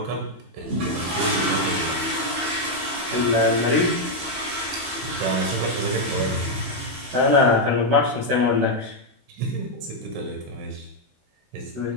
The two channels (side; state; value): left; late; 16 ms